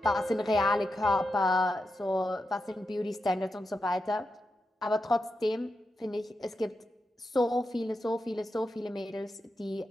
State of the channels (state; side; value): normal; both; correlation 0.87